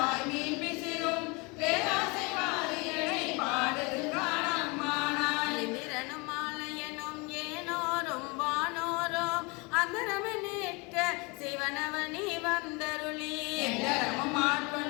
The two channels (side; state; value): right; quieter; 28.2 dB